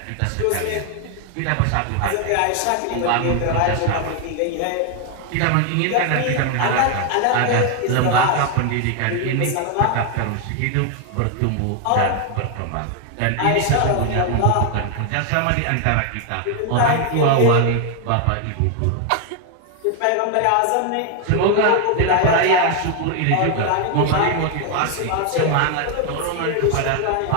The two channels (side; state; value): both; different; correlation 0.01